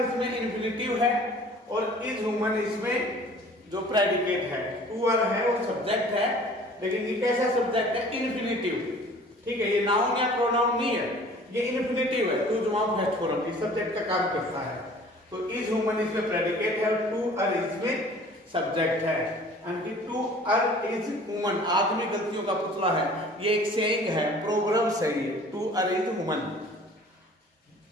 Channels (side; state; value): both; normal; correlation 0.49